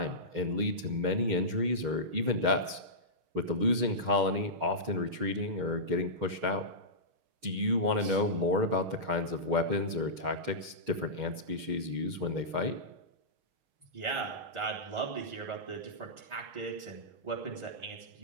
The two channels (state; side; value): late; left; 6.4 ms